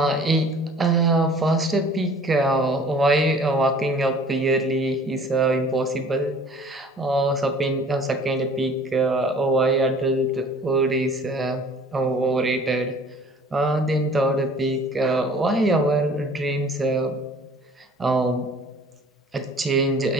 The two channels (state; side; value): normal; both; correlation 0.50